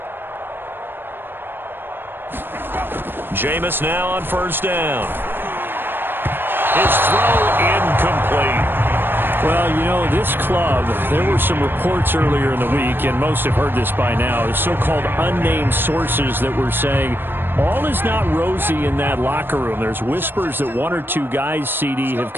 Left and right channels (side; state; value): left; late; 0.098 ms